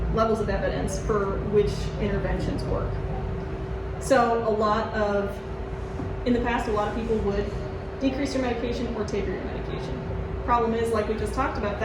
levels of evidence for which interventions work. So in the past, a lot of people would decrease your medication or taper your medication. Problem is, like we just talked about,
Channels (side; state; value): both; identical; correlation 1.00